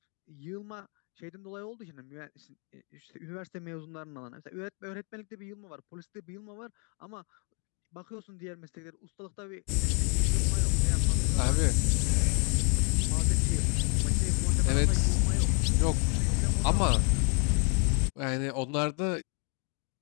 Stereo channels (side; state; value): right; quieter; 39.0 dB